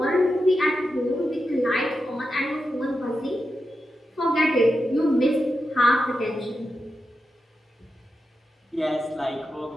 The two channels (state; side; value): normal; both; correlation 0.89